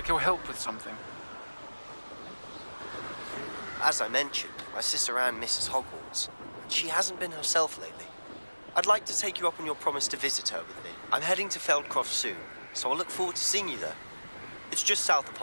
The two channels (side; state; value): both; inverted; correlation -1.00